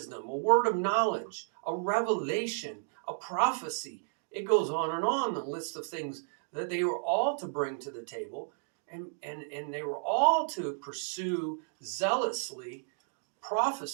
a word of knowledge, a revelation, a prophecy. It goes on, the list of things that they were all to bring to the table, and they were all to pursue zealously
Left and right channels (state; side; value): silent; left; digital silence